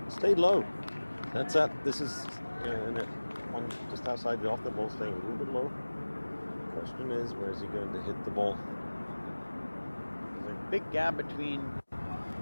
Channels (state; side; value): inverted; both; correlation -1.00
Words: stayed low. That's that. This is one just outside the off the ball, staying a little bit low. Question is, where is he going to hit the ball? There's a big gap between